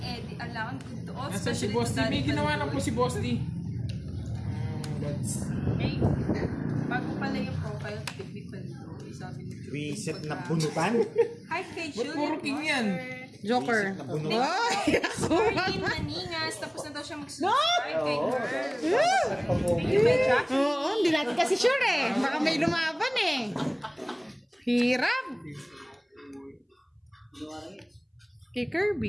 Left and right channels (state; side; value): identical; both; correlation 1.00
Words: alangan good to all. Nasa si especially Boss to D. May Daddy ginawa na Pandoy. po si Boss D. Hey, bago pala yung profile, Baby Pandoy. Sabi ni Joey. Reset na bunutan. Hi kay Ba't Juliet puro king yan? Joker. Reset na bunutan. Ay, ako. Marlene Maningas, tapos na daw siya mag-subscribe kay her. Thank you, Jack. Oo, hindi natin kasi sure eh. Baka may lumaban eh. Hirap. Kay